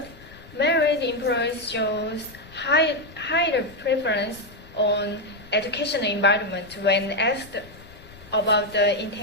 married employees shows higher preference on educational environment when asked about the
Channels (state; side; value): noise; left; rumble, 21 dB below the sound